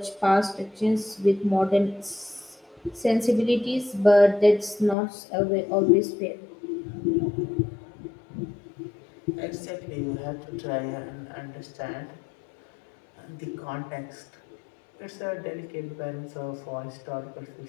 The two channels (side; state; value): right; drops out; at 5.0 s